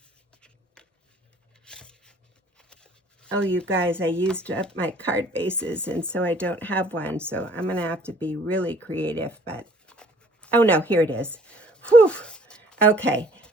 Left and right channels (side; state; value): both; normal; correlation 0.56